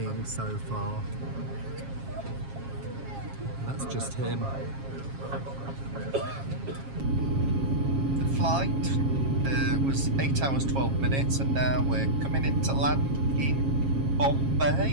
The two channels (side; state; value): left; late; 7.4 ms